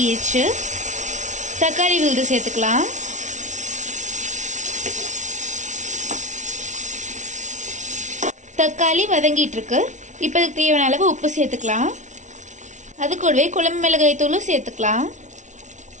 தக்காளி விழுது சேர்த்துக்கலாம். தக்காளி வதங்கிட்டு இருக்கு. இப்போ இதுக்கு தேவையான அளவு உப்பு சேர்த்துக்கலாம். அது கூடவே குழம்பு மிளகாய் தூளும் சேர்த்துக்கலாம்.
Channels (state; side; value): late; left; 0.36 ms